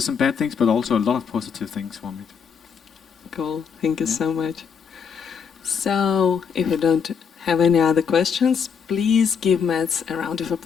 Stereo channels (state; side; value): quieter; right; 6.6 dB